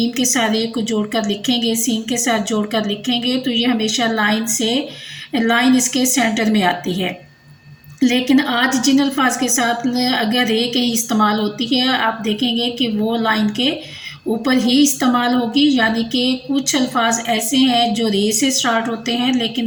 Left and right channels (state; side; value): identical; both; correlation 1.00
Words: के साथ रे को जोड़ कर लिखेंगे, सीन के साथ जोड़ कर लिखेंगे, तो ये हमेशा लाइन इसके सेंटर में आती है। लेकिन आज जिन अल्फाज के साथ अगर रे कहीं इस्तेमाल होती है, आप देखेंगे कि वो लाइन के ऊपर ही इस्तेमाल होगी। यानी कि कुछ अल्फाज ऐसे हैं जो रे से स्टार्ट होते हैं लेकिन